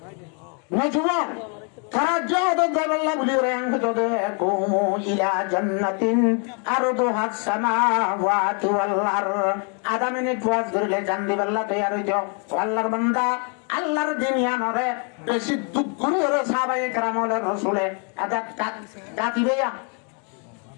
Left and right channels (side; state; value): right; quieter; 39.0 dB